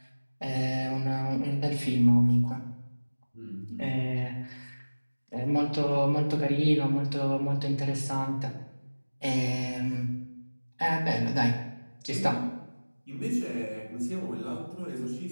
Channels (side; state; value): both; inverted; correlation -1.00